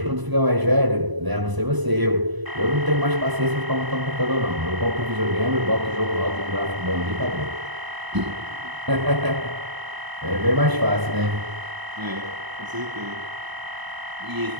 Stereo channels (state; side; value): late; left; 1.0 ms